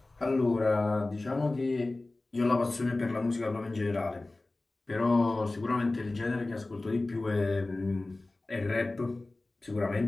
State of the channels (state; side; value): quieter; right; 3.0 dB